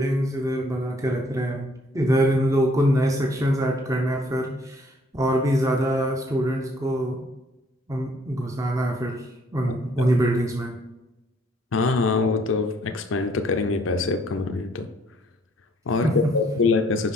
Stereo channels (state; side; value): normal; both; correlation 0.63